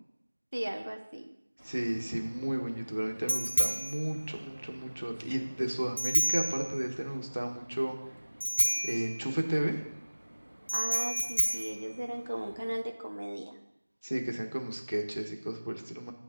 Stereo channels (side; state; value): both; inverted; correlation -1.00